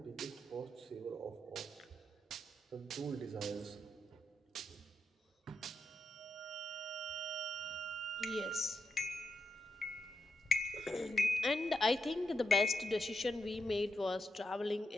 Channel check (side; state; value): both; normal; correlation 0.85